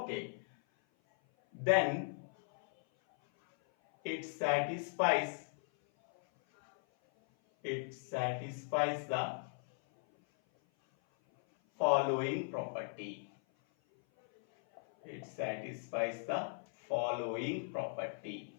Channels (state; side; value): silent; right; 53 dB below the other